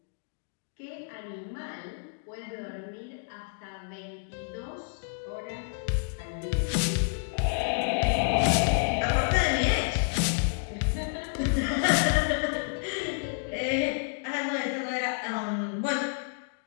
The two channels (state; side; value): silent; right; digital silence